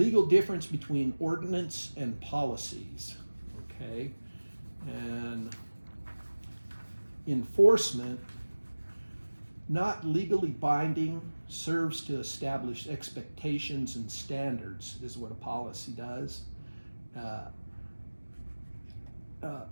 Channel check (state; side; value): inverted; both; correlation -1.00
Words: difference between ordinance and policies, okay? And enforcement, not legally binding, serves to establish expectations and standards, is what a policy does.